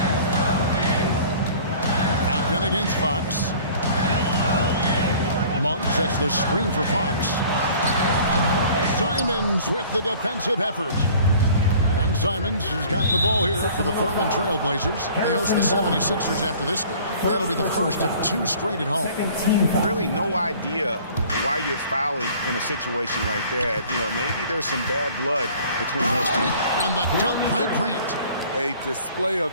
Aiton against Fox. Monk sets the screen for Fox. Simons with the defensive effort. And Simons has got the ball here for the Portland Trail Blazers. They host the 76ers after this game. That'll be the first of 2 straight at home. Really no idea why you're fouling in a situation like that. You know, maybe there's some bad blood between those two. And the dunk by Grant. A display of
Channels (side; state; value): both; inverted; correlation -0.49